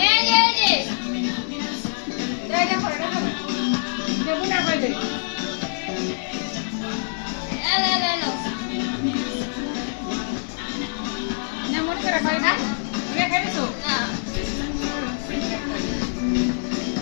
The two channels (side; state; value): right; silent; 60 dB below the other